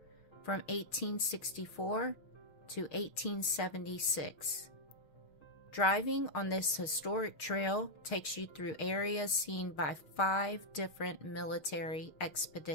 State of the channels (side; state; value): right; late; 6.5 ms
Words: from 1864 to 1876. Driving on this historic trail takes you through areas seen by 5 different military